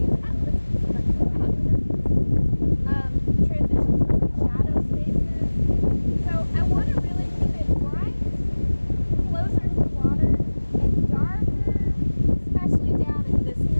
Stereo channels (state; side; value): inverted; both; correlation -1.00